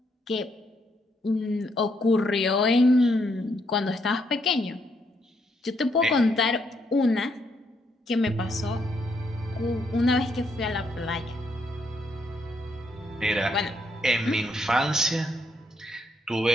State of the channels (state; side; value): normal; both; correlation 0.75